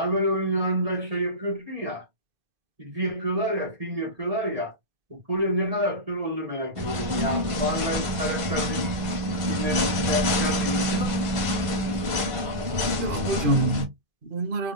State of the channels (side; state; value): left; late; 1.5 ms